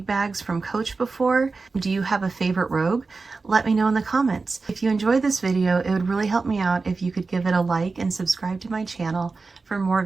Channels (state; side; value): quieter; left; 4.1 dB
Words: bags from Coach before? Do you have a favorite Rogue? Let me know in the comments. If you enjoyed this video, it would really help me out if you could give it a like and subscribe to my channel for more